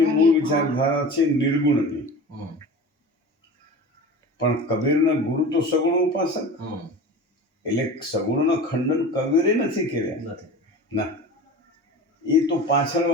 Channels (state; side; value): normal; both; correlation 0.34